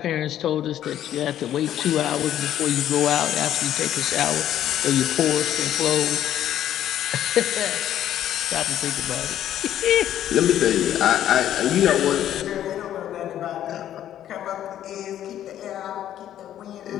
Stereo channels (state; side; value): quieter; right; 11.4 dB